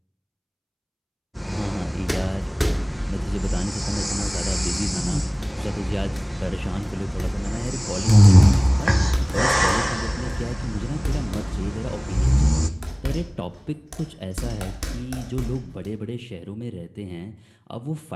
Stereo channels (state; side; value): identical; both; correlation 1.00